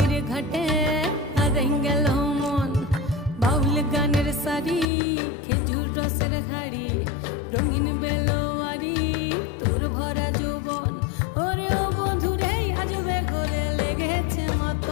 ঘাটে হারাই গেল মন বাউল গানের শাড়ি খেজুর রসের হাড়ি রঙিন বেলোয়ারি তোর ভরা যৌবন ওরে ও বন্ধুরে আজবে ঘরে লেগেছে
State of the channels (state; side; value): drops out; right; at 4.9 s